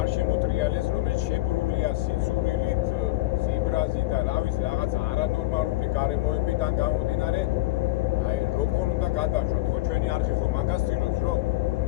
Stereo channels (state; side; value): quieter; right; 18.3 dB